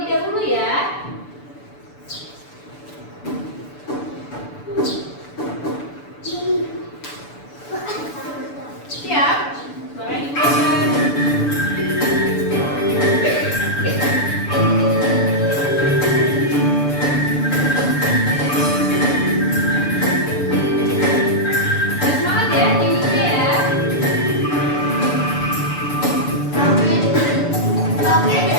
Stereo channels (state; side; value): late; right; 6.9 ms